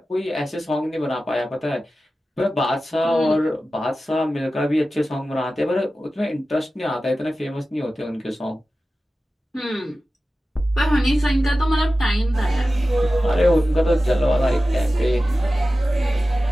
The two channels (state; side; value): normal; both; correlation 0.94